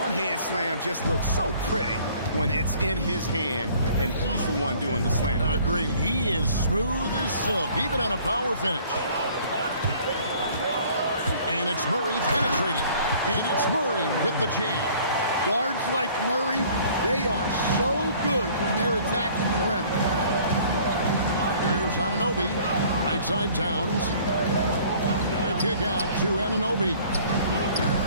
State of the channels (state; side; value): inverted; both; correlation -0.54